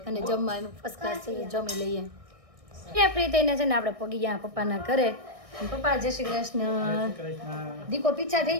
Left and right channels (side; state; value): left; late; 1.6 ms